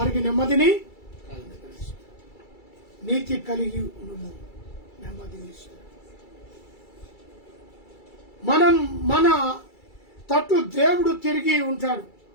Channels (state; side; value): late; right; 2.3 ms